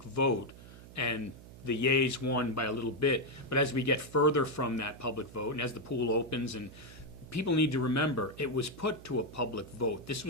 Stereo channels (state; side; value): noise; right; hum, 17 dB below the sound